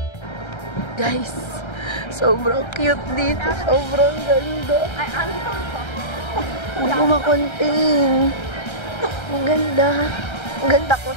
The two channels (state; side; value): late; right; 1.3 ms